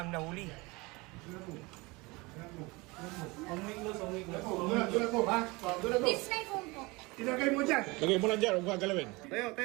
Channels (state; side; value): quieter; left; 24.5 dB